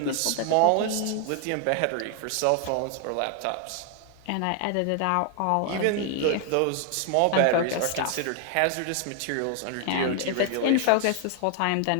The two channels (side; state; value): both; different; correlation 0.00